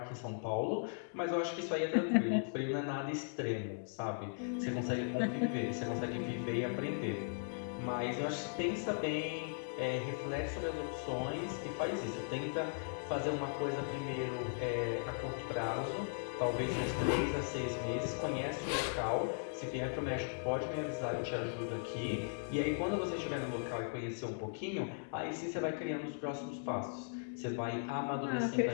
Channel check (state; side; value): silent; right; digital silence